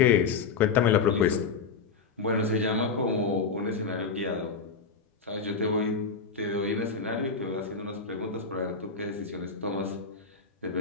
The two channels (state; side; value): quieter; right; 5.1 dB